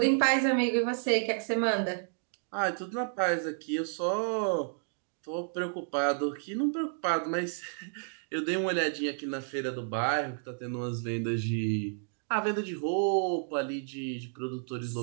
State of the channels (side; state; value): left; silent; digital silence